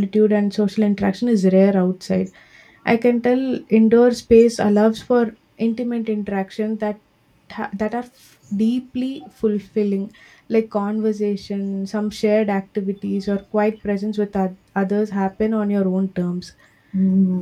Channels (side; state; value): both; identical; correlation 1.00